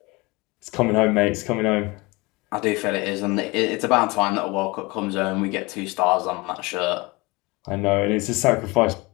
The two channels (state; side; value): quieter; right; 24.5 dB